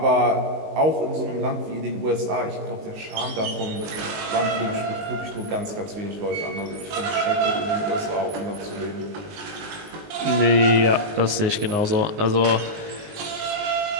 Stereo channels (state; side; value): late; left; 19 ms